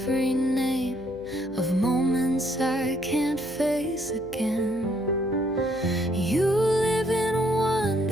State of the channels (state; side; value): noise; left; hum, 20 dB below the sound